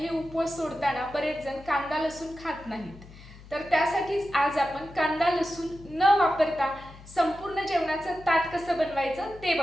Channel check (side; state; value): left; noise; hum, 19 dB below the sound